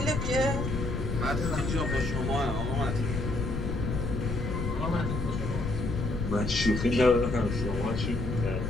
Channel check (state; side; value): noise; left; rumble, 2 dB below the sound